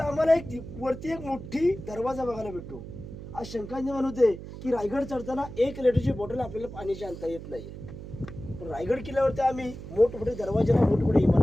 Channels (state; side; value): noise; right; hum, 12 dB below the sound